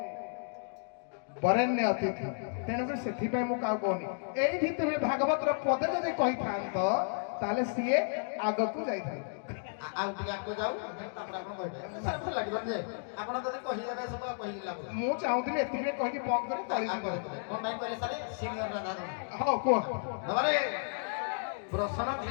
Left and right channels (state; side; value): silent; right; digital silence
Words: ବରେଣ୍ୟ ଅତିଥି ତେଣୁକରି ସେଥିପାଇଁ ମୁଁ କାହାକୁ କହୁନି। ଏଇଠି ତୁମେ ଭାଗବତର ପଦେ ଯଦି କହିଥାନ୍ତ ତାହେଲେ ସିଏ ଆଗକୁ ଯାଇଥାନ୍ତେ। ଆଉ ଟିକେ ଆଗକୁ ଯାଉ ତାପରେ ଆପଣ କହିବେ ଲାଗିବ ଯେ ଆପଣ ଯଦି କହିଦେବେ ସବୁ କହିଲି ଲାଭ। ମୁଁ ଚାହୁଁଥିଲି ଏତିକି କହିକି ବନ୍ଦ କରି ତଳିକି କଣ ପାଇଁ କହିଲେ ସାରେ ସିନିୟର ରାଧା ହଉ କୁହ। ବାବାରେ ପ୍ରଶ୍ନ